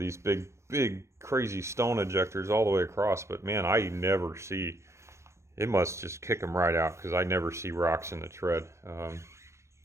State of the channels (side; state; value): left; late; 0.13 ms